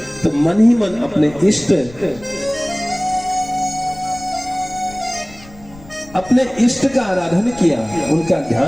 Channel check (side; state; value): left; noise; rumble, 20 dB below the sound